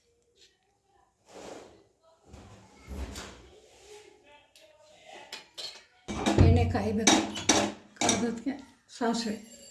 ಎಣ್ಣೆ ಕಾಯಬೇಕು. ಕಾದಕ್ಕೆ ಸಾಸಿವೆ,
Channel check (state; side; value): identical; both; correlation 1.00